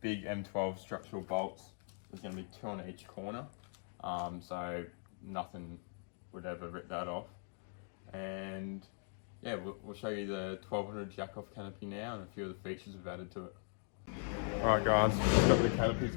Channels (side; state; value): right; silent; 51 dB below the other